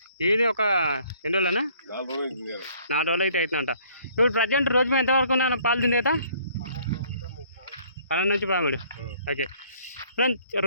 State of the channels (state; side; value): inverted; both; correlation -0.60